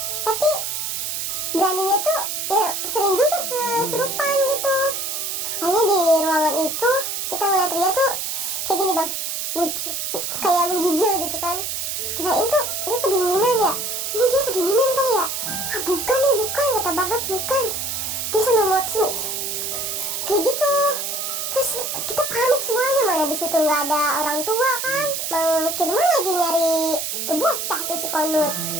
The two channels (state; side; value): noise; right; hiss, 3 dB below the sound